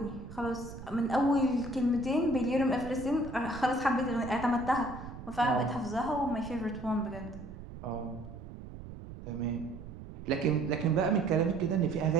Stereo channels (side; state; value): right; noise; rumble, 13 dB below the sound